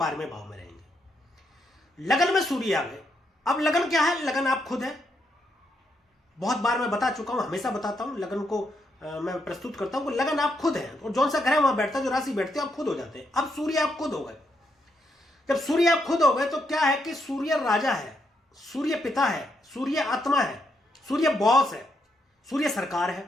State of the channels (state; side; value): normal; both; correlation 0.78